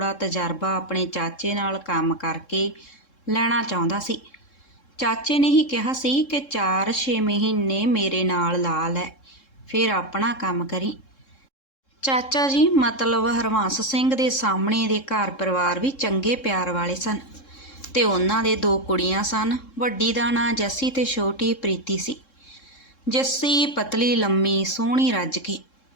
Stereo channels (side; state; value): right; late; 3.7 ms